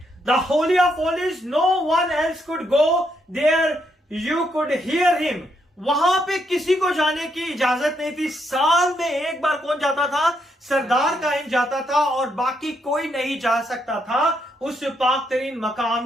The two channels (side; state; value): both; normal; correlation 0.77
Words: The holy of holies, no one else could go there, you could hear him. वहां पे किसी को जाने की इजाजत नहीं थी। साल में एक बार कौन जाता था, सरदार कायन जाता था, और बाकी कोई नहीं जा सकता था उस पाक तरीन मकाम